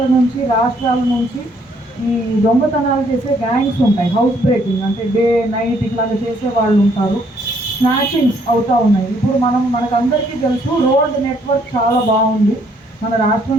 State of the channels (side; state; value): both; normal; correlation 0.67